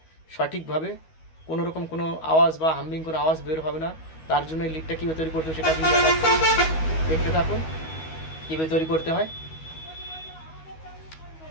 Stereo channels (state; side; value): late; right; 13 ms